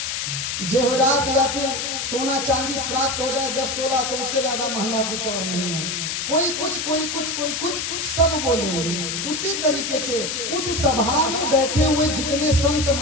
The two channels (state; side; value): noise; left; hiss, 2 dB below the sound